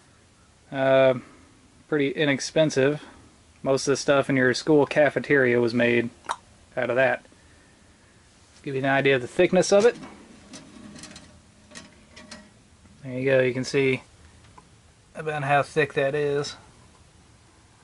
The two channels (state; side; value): identical; both; correlation 1.00